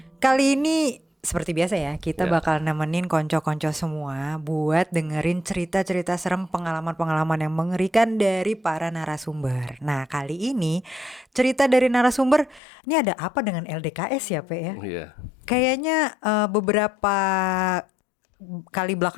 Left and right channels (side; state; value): right; drops out; at 12.6 s